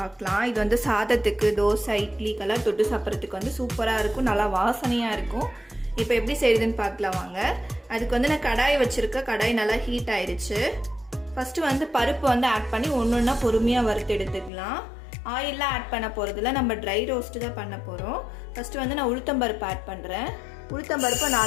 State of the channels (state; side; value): drops out; right; at 14.5 s